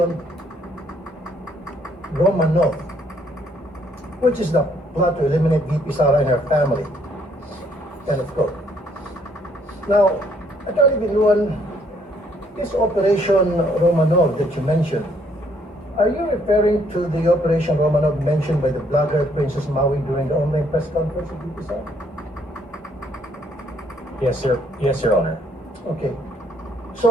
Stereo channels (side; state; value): both; normal; correlation 0.67